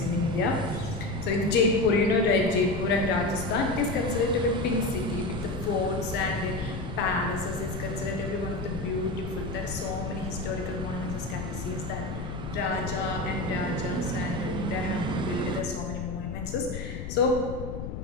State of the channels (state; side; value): noise; left; rumble, 7 dB below the sound